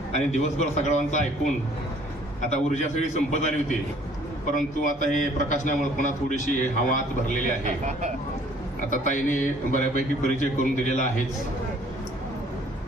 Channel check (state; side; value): normal; both; correlation 0.57